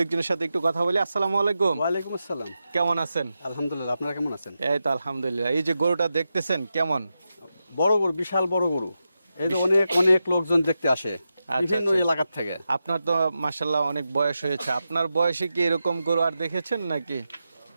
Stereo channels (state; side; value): inverted; both; correlation -0.89